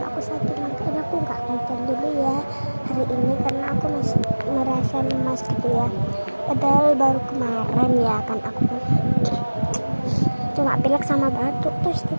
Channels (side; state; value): both; inverted; correlation -1.00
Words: aku sakit, makanya aku nggak konten dulu ya hari ini karena aku masih merasa lemas gitu ya. Padahal baru kemarin ya kan aku cuma pilek sama batuk, terus